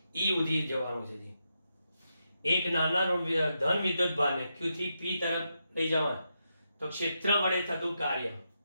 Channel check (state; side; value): inverted; both; correlation -0.85